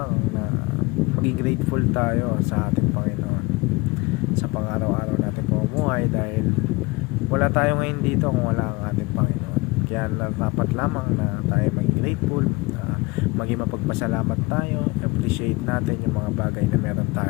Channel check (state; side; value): quieter; right; 23.9 dB